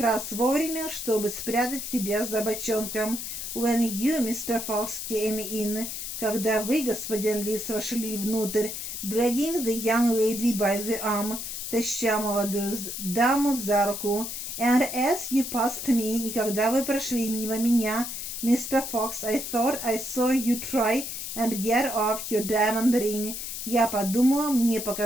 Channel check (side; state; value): left; noise; hiss, 6 dB below the sound